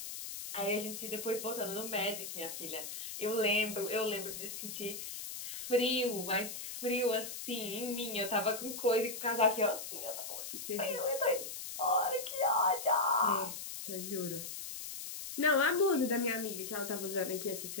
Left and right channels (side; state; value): left; noise; hiss, 7 dB below the sound